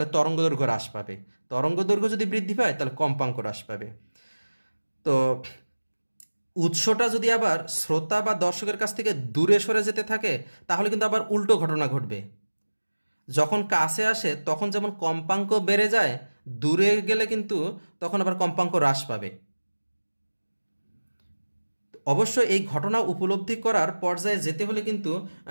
তরঙ্গ দৈর্ঘ্য হ্রাস পাবে, তরঙ্গ দৈর্ঘ্য যদি বৃদ্ধি পায় তাহলে কম্পাঙ্ক হ্রাস পাবে। তো উৎসটা যদি আবার শ্রোতা বা দর্শকের কাছ থেকে দূরে সরে যেতে থাকে তাহলে কিন্তু আবার উল্টো ঘটনা ঘটবে। যখন কাছে আসে তখন যেমন কম্পাঙ্ক বেড়ে যায়, দূরে গেলে কিন্তু তখন আবার কম্পাঙ্ক হ্রাস পাবে। অবশ্য এই ঘটনা উপলব্ধি করার পর্যায়ে যেতে হলে কিন্তু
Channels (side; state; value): both; inverted; correlation -1.00